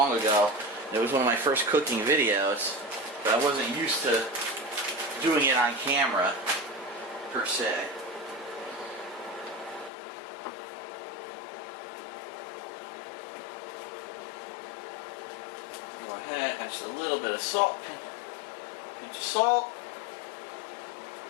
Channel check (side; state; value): right; drops out; at 9.9 s